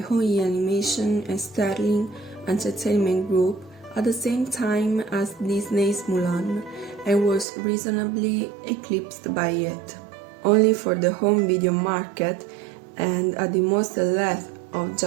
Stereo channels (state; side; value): drops out; left; at 7.5 s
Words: Animation and Sterling Entertainment Group at the same time as Disney's Mulan and was reasonably eclipsed by it. Only for the home video market and at the most length of